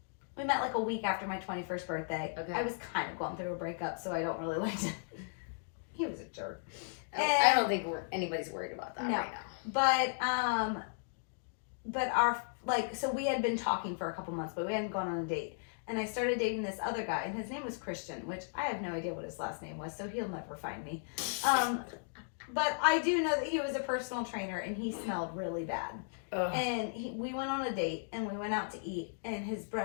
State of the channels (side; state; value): right; silent; digital silence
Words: a week after my 21st birthday. Okay. I was kind of going through a breakup, so I don't really like to. He was a jerk. I don't think anybody's worried about that right now. But our so we had been talking for a couple months, but we hadn't gone on a date. And I started dating this other guy, and his name was Christian, which I have no idea what his last name was, so he'll never find me. But I do know that he was a personal trainer, and he smelled really bad. Ugh. And we went on a date, and we went out to eat, and his